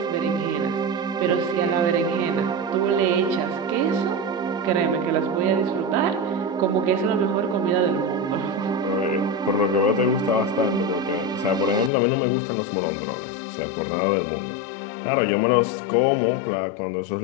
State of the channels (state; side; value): drops out; right; at 11.9 s